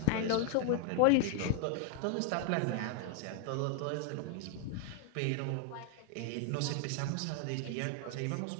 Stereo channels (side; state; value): both; different; correlation 0.00